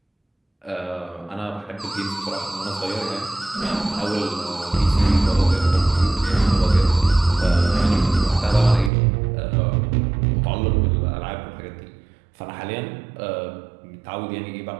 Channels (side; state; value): left; drops out; at 8.9 s